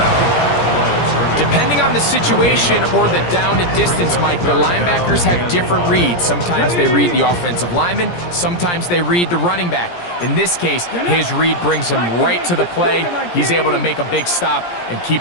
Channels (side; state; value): right; late; 17 ms